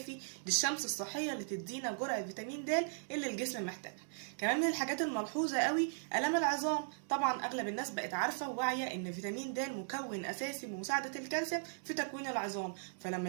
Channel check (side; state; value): left; silent; digital silence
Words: للشمس الصحيه اللي تدينا جرعه فيتامين د اللي الجسم محتاجها. كمان من الحاجات الملحوظه قوي الام العظام. طبعا اغلب الناس بقت عارفه وواعيه ان فيتامين د مكون اساسي بمساعده الكالسيوم في تكوين العظام. فلما